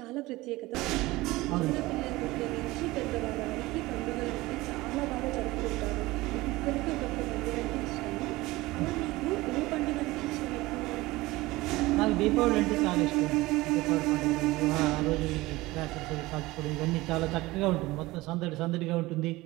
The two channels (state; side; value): quieter; left; 19.8 dB